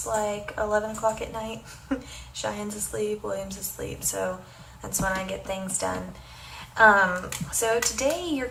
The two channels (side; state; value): both; identical; correlation 1.00